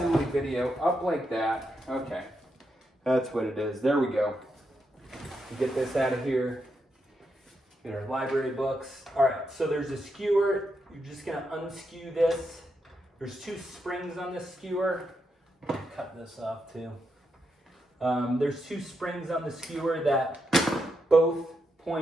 video, up like that. Okay, that's what it is. There we go. Get this out of here. Get our library books. All right, so there's a skewer. You're just gonna unskew this. There's 2 springs on this skewer. Cut this off too. There's 2 springs on the skewer that both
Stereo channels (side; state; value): both; normal; correlation 0.83